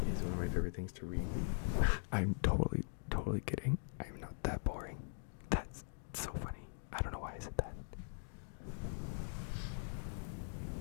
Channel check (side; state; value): right; silent; digital silence